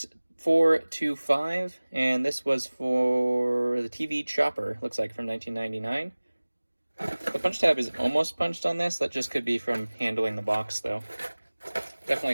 and this was for the TV Chopper, looks like from 1999. The punch tab is almost punched on this. That just could be from handling the box, though.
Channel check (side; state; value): both; inverted; correlation -1.00